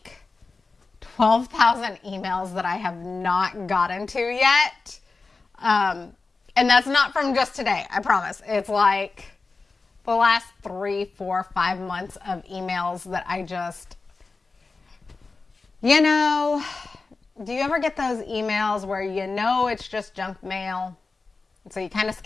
12,000 emails that I have not gotten to yet. And that's not from just today, I promise. It's like the last 3, 4, 5 months of emails that I just, you know, do you ever get those emails where you know it's just junk mail? And so you kind of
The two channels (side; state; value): right; quieter; 4.0 dB